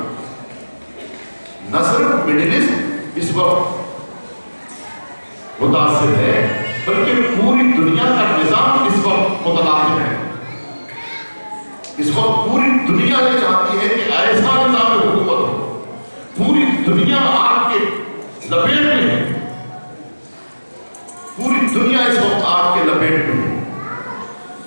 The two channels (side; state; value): both; inverted; correlation -1.00